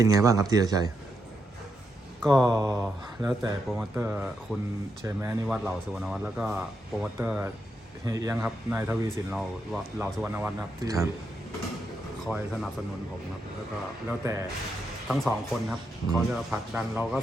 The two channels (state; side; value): normal; both; correlation 0.82